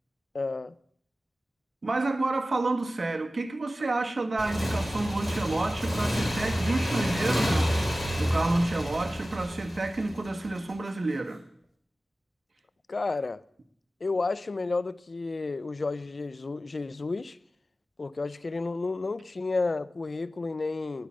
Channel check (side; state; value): both; normal; correlation 0.95